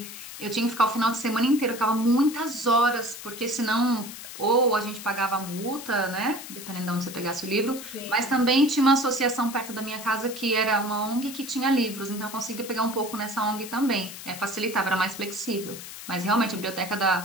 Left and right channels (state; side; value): noise; left; hiss, 12 dB below the sound